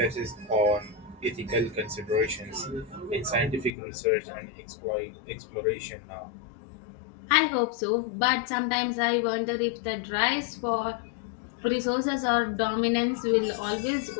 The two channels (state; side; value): drops out; right; at 3.7 s